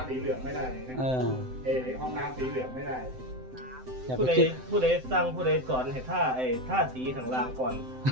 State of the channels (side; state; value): left; late; 7.8 ms